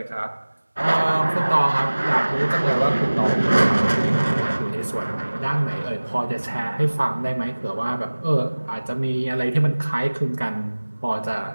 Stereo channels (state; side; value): inverted; both; correlation -1.00